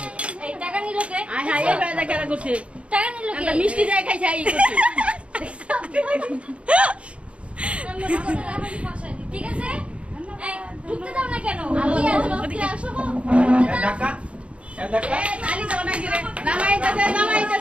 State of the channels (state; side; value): late; left; 0.061 ms